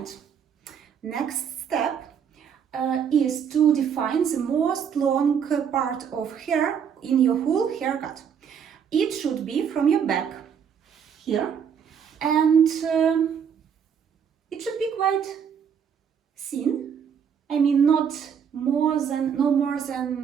next step is to define the most long part of hair in your whole haircut. It should be from your back here, and it should be quite thin. I mean, no more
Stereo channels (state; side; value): quieter; left; 7.6 dB